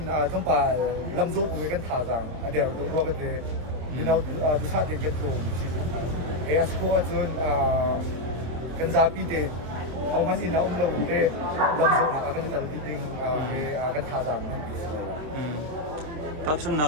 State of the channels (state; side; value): late; left; 26 ms